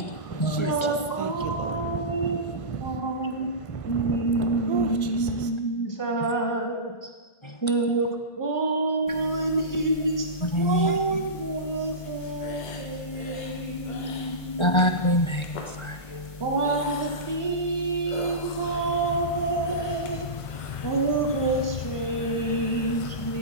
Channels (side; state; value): right; late; 1.5 ms